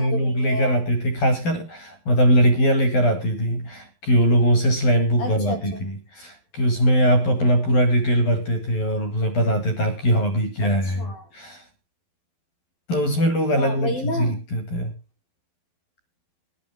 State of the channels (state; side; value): late; right; 12 ms